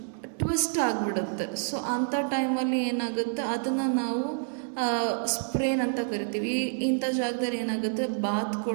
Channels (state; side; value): silent; left; digital silence